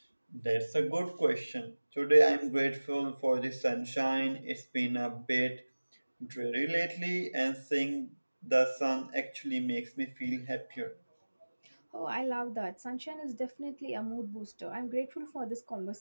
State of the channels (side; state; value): both; inverted; correlation -1.00